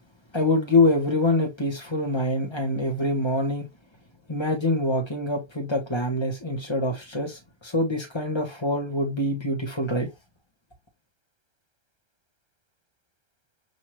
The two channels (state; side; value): late; right; 1.3 ms